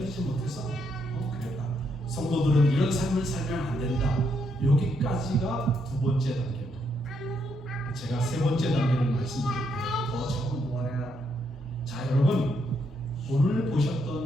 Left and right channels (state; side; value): normal; both; correlation 0.76